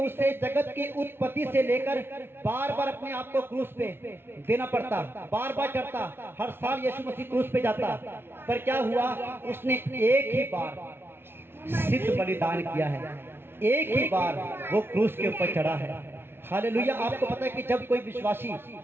उसे जगत की उत्पत्ति से लेकर बार बार अपने आप को क्रूस पे देना पड़ता, बार बार चढ़ता, हर साल यीशु मसीह क्रूस पे जाता। पर क्या हुआ, उसने एक ही बार सिद्ध बलिदान किया है, एक ही बार वो क्रूस के ऊपर चढ़ा है। हालेलुया। आपको पता है कि जब कोई विश्वासी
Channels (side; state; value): left; late; 0.11 ms